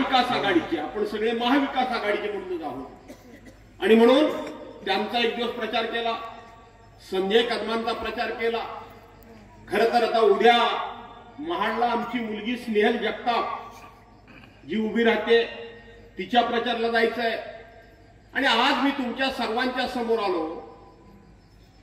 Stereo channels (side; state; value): both; identical; correlation 1.00